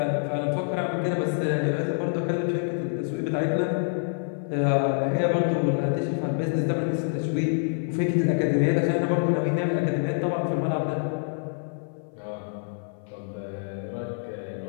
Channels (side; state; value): right; silent; 55 dB below the other